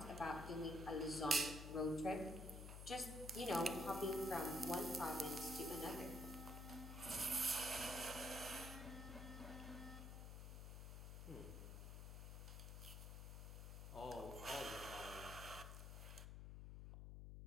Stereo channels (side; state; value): left; noise; hum, 8 dB below the sound